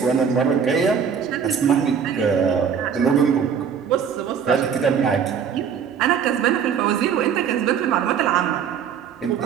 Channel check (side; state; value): left; quieter; 7.3 dB